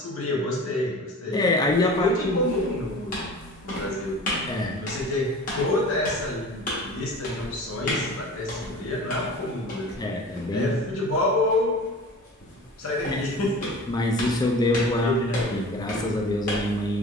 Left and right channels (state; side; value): normal; both; correlation 0.39